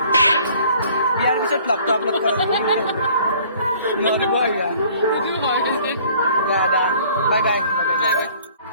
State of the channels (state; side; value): inverted; both; correlation -0.54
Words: বিয়াৰ পিছত ব্লগটো আপলোড কৰা বাই বাই